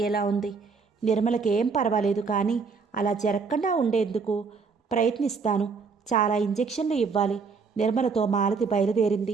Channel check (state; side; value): quieter; left; 5.1 dB